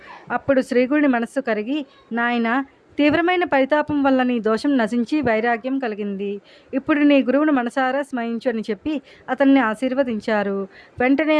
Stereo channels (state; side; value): identical; both; correlation 1.00